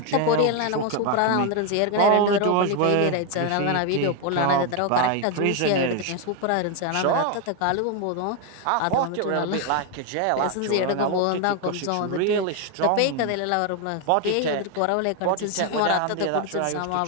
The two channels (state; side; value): different; both; correlation 0.01